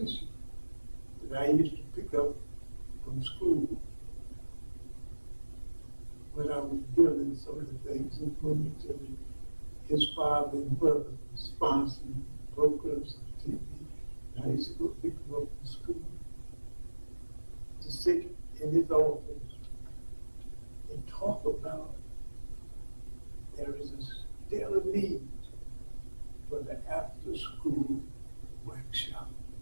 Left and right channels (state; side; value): inverted; both; correlation -1.00